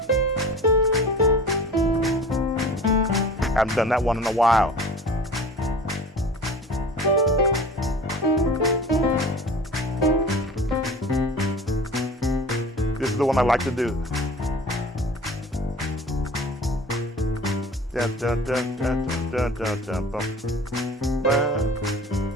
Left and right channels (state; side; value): normal; both; correlation 0.40